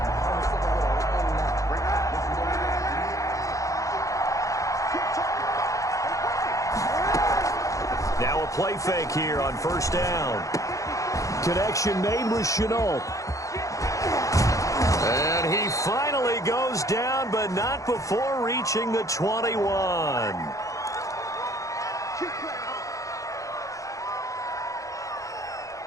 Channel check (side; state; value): right; late; 0.16 ms